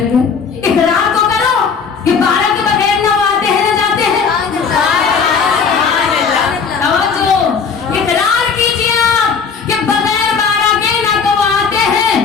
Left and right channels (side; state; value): right; quieter; 5.8 dB